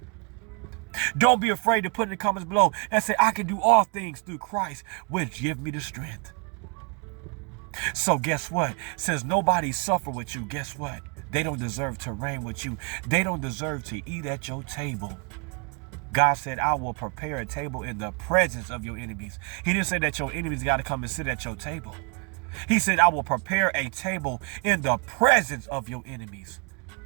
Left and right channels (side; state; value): left; quieter; 34.8 dB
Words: Don't be afraid to put in the comments below and say, I can do all things through Christ, which give me the strength. So guess what? Since nobody suffered with you, guess what? They don't deserve to reign with you. They don't deserve to eat at your table. God said, I will prepare a table in the presence of your enemies. He didn't say that your enemies got to come and sit at your table. He said, I will prepare a table in the presence of your enemies.